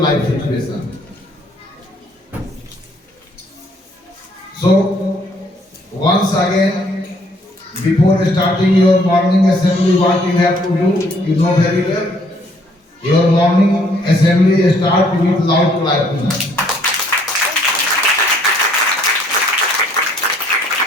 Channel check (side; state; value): both; normal; correlation 0.64